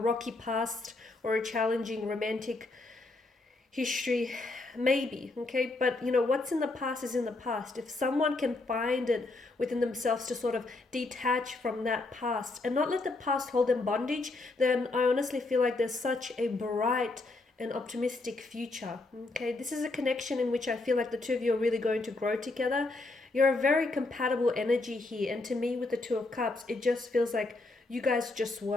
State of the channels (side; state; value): right; quieter; 3.2 dB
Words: past or a challenging romantic history? Maybe. Okay, but what's in the past is in the past. If someone can find it within themselves to sort of detach from that past and not let the past hold them bondage, then I honestly feel like there's such a bright and optimistic future. Okay, this is a connection in which I feel like the two of you are really going to grow together. You're a very compatible energy here, and to me with the Two of Cups, it just feels like you guys just